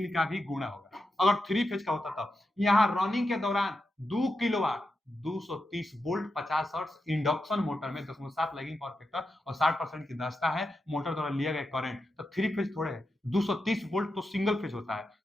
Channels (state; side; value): normal; both; correlation 0.88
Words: का भी गुणा होगा। अगर 3 फेज का होता तब यहाँ रनिंग के दौरान 2 kilowatt 230 volt 50 hertz induction motor में 10.7 लैगिंग पावर फैक्टर और 60% की दक्षता है, मोटर द्वारा लिया गया करंट, तो 3 फेज थोड़े है, 230 वोल्ट तो सिंगल फेज होता है,